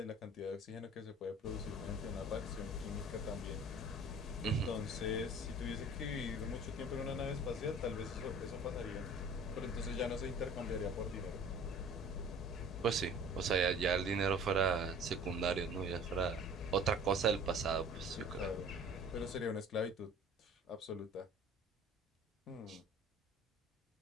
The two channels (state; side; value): normal; both; correlation 0.47